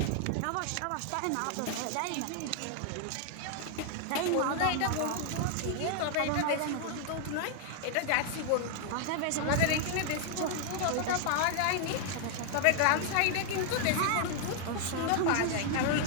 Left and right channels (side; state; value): both; different; correlation 0.00